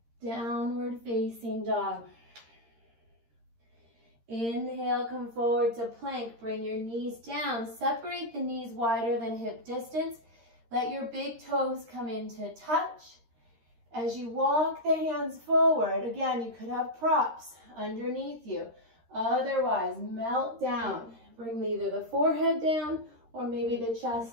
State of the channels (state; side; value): late; left; 13 ms